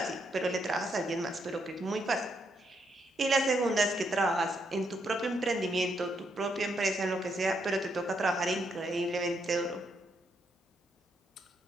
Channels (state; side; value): normal; both; correlation 0.77